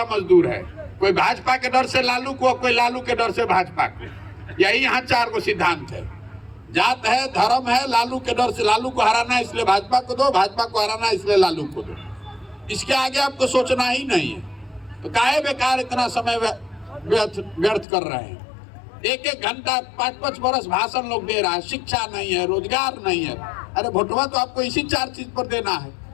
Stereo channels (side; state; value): right; drops out; at 17.9 s